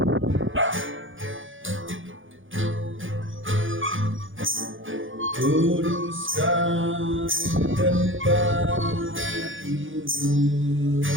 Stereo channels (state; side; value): late; left; 0.57 ms